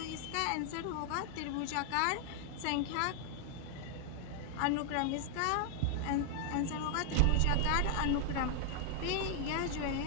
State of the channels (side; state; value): both; different; correlation 0.00